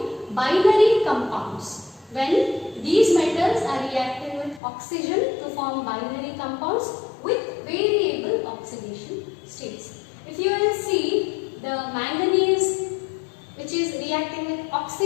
binary compounds. When these metals are reacting with oxygen to form binary compounds with variable oxidation states. If you will see the manganese which is reacting with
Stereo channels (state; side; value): drops out; right; at 4.6 s